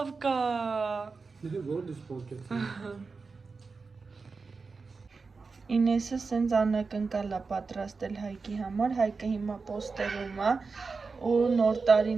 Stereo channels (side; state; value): left; quieter; 4.5 dB